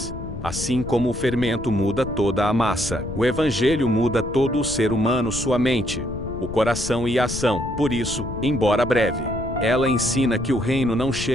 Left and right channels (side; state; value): left; noise; rumble, 9 dB below the sound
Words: Assim como o fermento muda toda a massa, o evangelho muda todo o ser humano, sua mente, o coração e a ação. Por isso, embora breve, ela ensina que o reino não